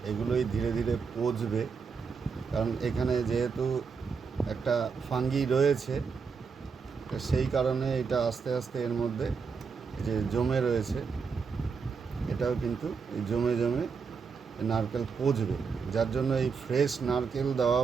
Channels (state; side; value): quieter; left; 5.5 dB